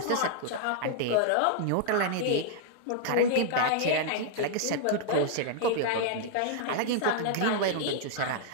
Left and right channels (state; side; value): different; both; correlation -0.01